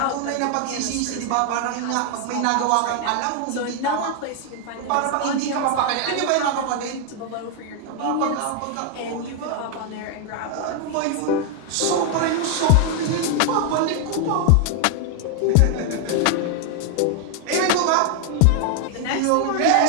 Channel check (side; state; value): both; different; correlation 0.00